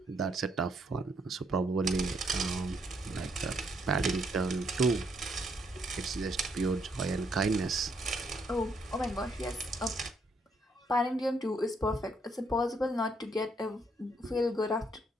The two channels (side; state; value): both; normal; correlation 0.73